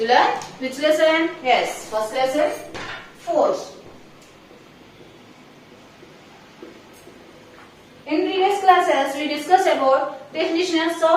learned which lesson? Yes, first lesson force. In previous classes, we discussed about definitions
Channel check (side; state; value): both; identical; correlation 1.00